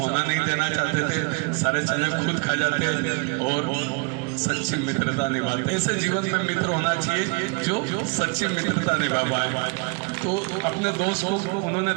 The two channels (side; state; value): left; quieter; 33.3 dB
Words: नहीं देना चाहते थे, सारे चने खुद खा जाते और सच्ची मित्रता निभाते। ऐसे जीवन में मित्र होना चाहिए जो सच्ची मित्रता निभा पाए। तो अपने दोस्त को उन्होंने